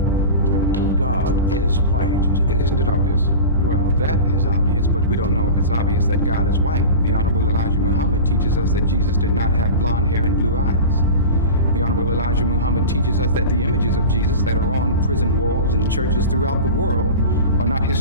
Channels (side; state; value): both; inverted; correlation -0.30